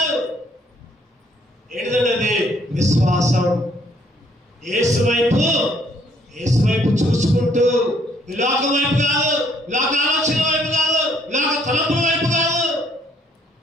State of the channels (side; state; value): both; normal; correlation 0.65